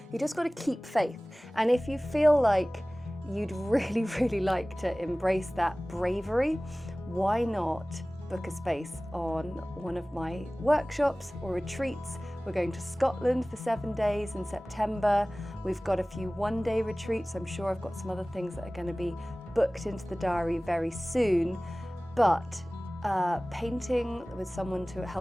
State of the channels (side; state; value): both; normal; correlation 0.98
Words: you just got to keep faith. And if you feel like you'd really, really like to embrace that bravery, why not book a space on one of my workshops or retreats? We're going to Scotland for 7 days in September. We've got a few one-day retreats. I'm sure I've got some other things that are going to be booked into the diary very soon. But painting with someone to